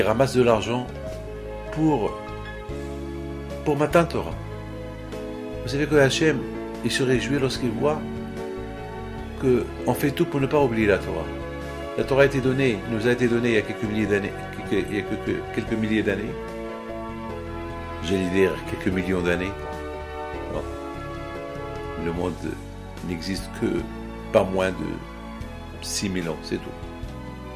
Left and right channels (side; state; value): both; identical; correlation 1.00